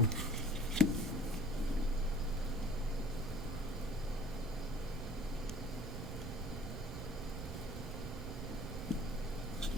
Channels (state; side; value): noise; right; rumble, 8 dB below the sound